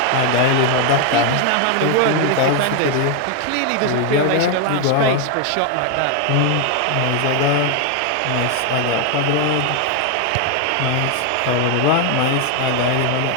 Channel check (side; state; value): both; different; correlation 0.01